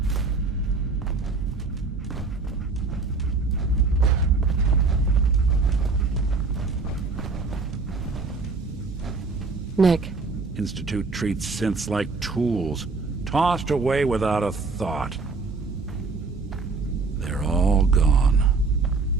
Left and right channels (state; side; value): quieter; left; 4.1 dB